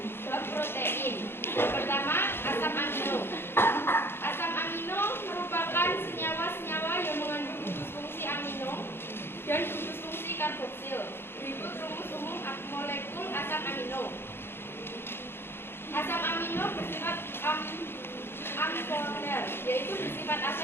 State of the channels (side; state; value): right; late; 0.11 ms